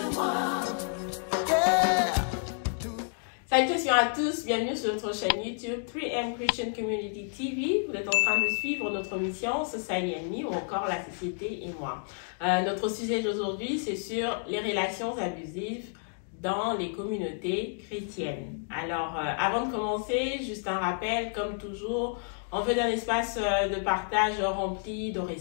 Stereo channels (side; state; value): right; silent; 58 dB below the other